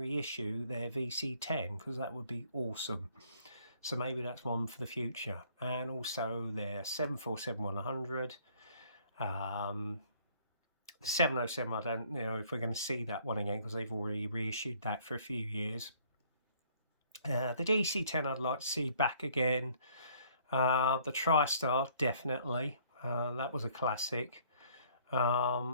their VC10, because that would be awesome. So maybe that's one for the future. And also their 747-100, the 707, I don't know if we're going to see that one again, because they've already reissued that for a few years. The DC10 I'd like to see back again. The TriStar, definitely. That was a classic,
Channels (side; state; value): both; inverted; correlation -0.61